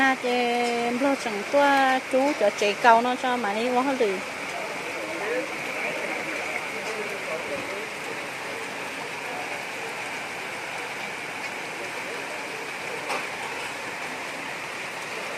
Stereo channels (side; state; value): both; identical; correlation 1.00